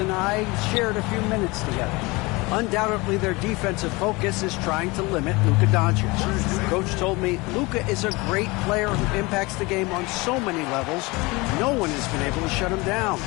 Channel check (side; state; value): right; quieter; 24.3 dB